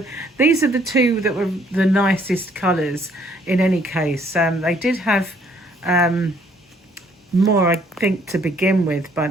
these are the two that were the nicest colours in any case. They did have more, I think, to begin with,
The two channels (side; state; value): both; normal; correlation 0.64